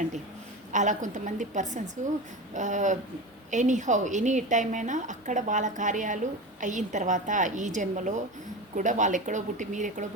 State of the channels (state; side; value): normal; both; correlation 0.26